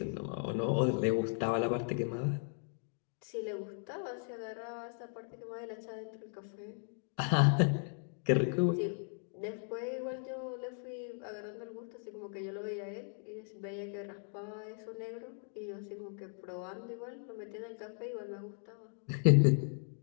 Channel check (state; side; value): silent; right; 53 dB below the other